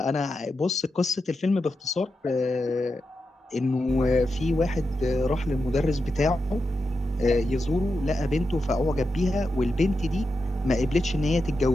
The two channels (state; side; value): normal; both; correlation 0.88